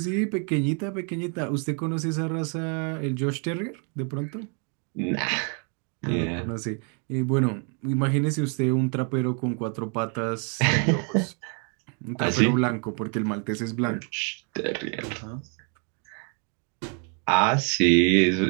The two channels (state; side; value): quieter; left; 39.3 dB